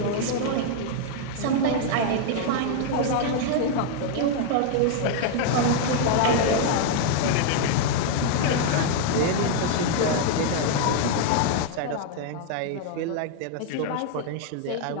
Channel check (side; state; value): both; different; correlation 0.00